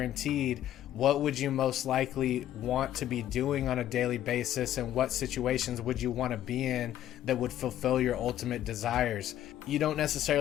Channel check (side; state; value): right; quieter; 12.2 dB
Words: what would you most likely want to be doing on a daily basis, and what situations would you want to be in that would fulfill your ultimate desires? You don't